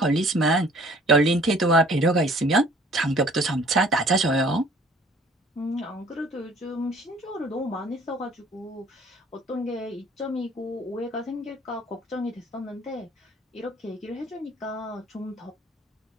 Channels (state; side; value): normal; both; correlation 0.55